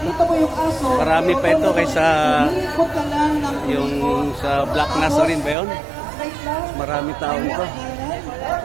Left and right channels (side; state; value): left; drops out; at 5.6 s